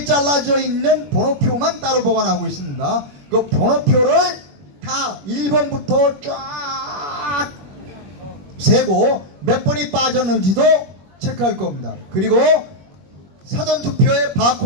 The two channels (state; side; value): late; left; 21 ms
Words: 잘라져 있는 번호표만 따로 보관하고 있습니다. 그 번호표를 다 1번부터 쫙 세고 몇 번이 빠졌는지도 체크할 겁니다. 그리고 사전투표의